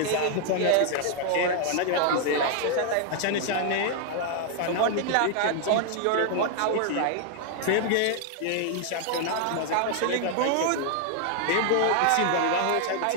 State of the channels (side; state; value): both; different; correlation 0.00